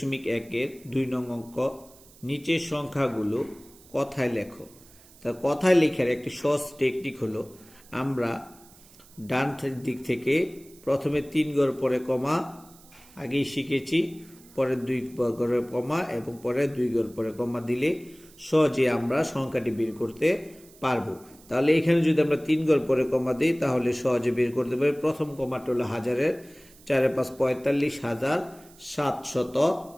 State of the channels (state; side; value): noise; right; hiss, 25 dB below the sound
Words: 2 নং অঙ্ক। নিচের সংখ্যাগুলো কথায় লেখো। তা কথায় লেখার একটি সহজ টেকনিক হলো, আমরা ডান দিক থেকে প্রথমে 3 ঘর পরে কমা আগেই শিখেছি, পরে 2 ঘরে কমা এবং পরে 2 ঘর পরে কমা দিলে সহজে আমরা সংখ্যাটি বের করতে পারবো। তাহলে এখানে যদি আমরা 3 ঘর পরে কমা দিই তাহলে সহজে বের করতে পারি। প্রথম কমাটা হলো হাজারের 4 5